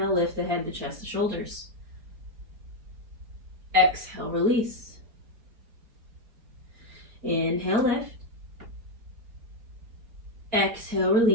lift the head, the chest, the shoulders. Exhale, release. Inhale, lift. Exhale,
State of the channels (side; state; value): left; late; 4.2 ms